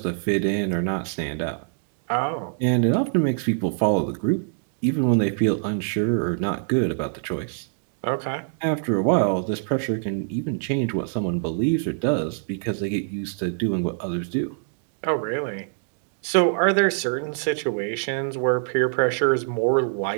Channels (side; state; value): left; silent; digital silence